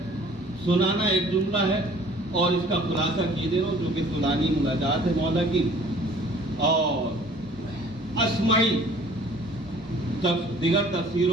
سنانا ایک جملہ ہے اور اس کا خلاصہ کیے دے رہا ہوں جو کہ فلانی مناجات ہے مولا کی. اور اسمعی دیگر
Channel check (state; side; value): normal; both; correlation 0.52